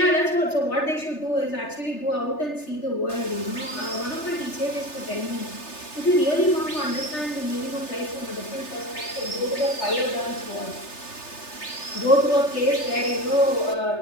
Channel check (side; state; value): right; late; 3.3 ms